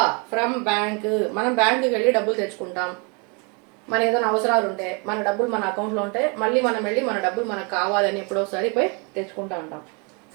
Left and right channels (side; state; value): left; quieter; 33.1 dB